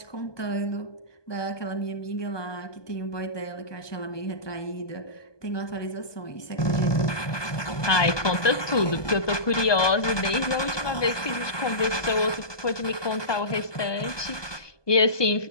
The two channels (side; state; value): right; late; 1.2 ms